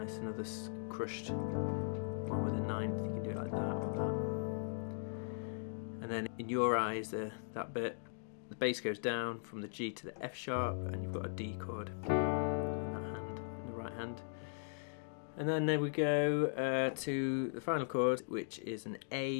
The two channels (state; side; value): silent; right; digital silence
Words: another crushed one with a 9th. You can do it like that or that. And then in Your Eyes, that bit, the bass goes down from the G to the F sharp, and you've got a D chord in that hand, in the right hand. And then there we go to the final chord, which is an